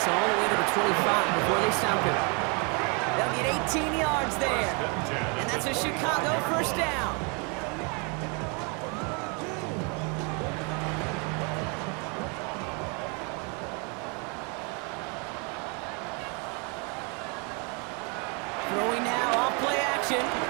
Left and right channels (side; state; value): left; quieter; 33.9 dB